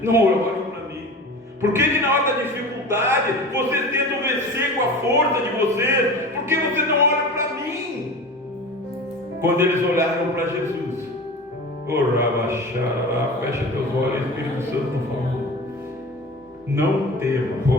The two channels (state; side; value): normal; both; correlation 0.34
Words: não olham para mim? Por que na hora da dificuldade vocês tentam vencer com a força de vocês? Por que vocês não olham para mim? Quando eles olharam para Jesus, fecha teus olhos, Espírito Santo, por favor. Não tema,